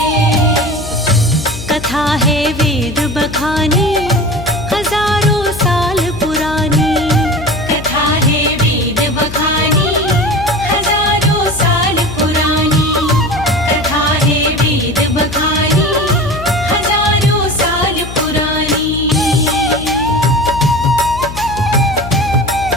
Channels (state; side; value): noise; left; hum, 11 dB below the sound